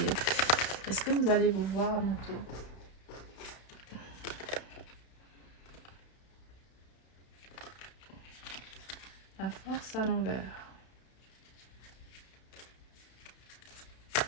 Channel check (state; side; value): late; right; 32 ms